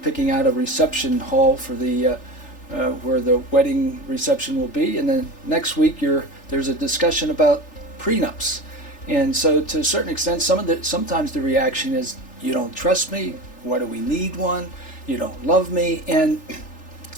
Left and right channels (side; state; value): right; late; 3.4 ms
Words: picking out a reception hall for the where the wedding reception will be, and then next week there's a discussion about prenups. And so to a certain extent, sometimes the reaction is, you don't trust me, why do we need one, you don't love me. And